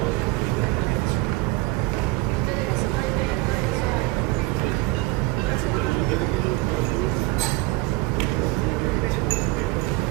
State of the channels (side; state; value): left; quieter; 20.4 dB